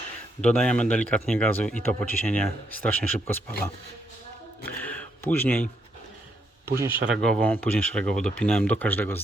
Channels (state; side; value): normal; both; correlation 0.77